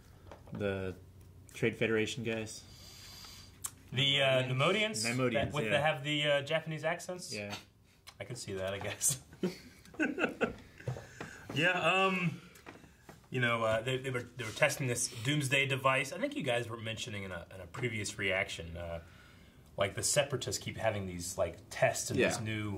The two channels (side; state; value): both; identical; correlation 1.00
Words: Trade Federation guys? The Nemodians? Nemodians, that have the Japanese accents? Yeah. I can see that, I guess. Yeah, they were testing this doomsday device. I think you guys were mentioning in a previous reaction, like the Separatists keep having these like tests and these